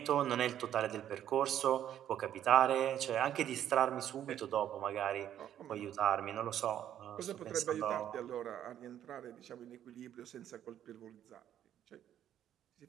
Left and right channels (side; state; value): left; quieter; 10.7 dB